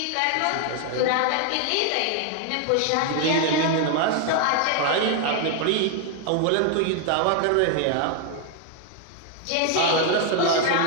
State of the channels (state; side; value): different; both; correlation 0.00